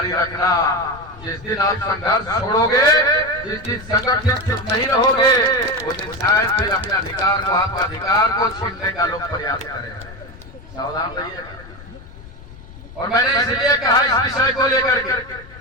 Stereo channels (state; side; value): noise; left; rumble, 18 dB below the sound